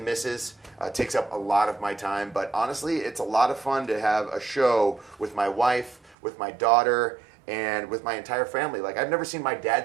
Mrs. Takes up a lot of my time, but honestly, it's a lot of fun to have a show with my wife, with my daughter, and with my entire family. Like, I've never seen my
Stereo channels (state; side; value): drops out; left; at 6.2 s